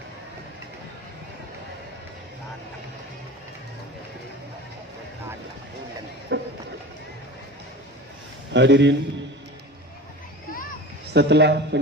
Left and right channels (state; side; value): normal; both; correlation 0.34